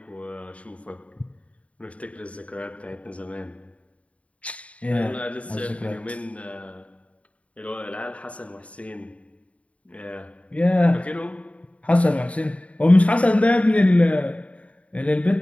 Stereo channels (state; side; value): late; right; 0.065 ms